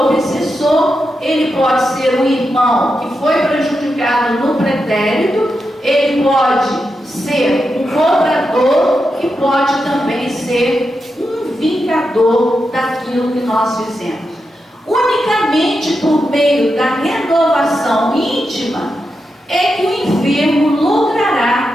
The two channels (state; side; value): normal; both; correlation 0.87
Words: ele pode ser um irmão que foi prejudicado no pretérito, ele pode ser um cobrador e pode também ser um vingador daquilo que nós fizemos. Unicamente por meio da renovação íntima é que o enfermo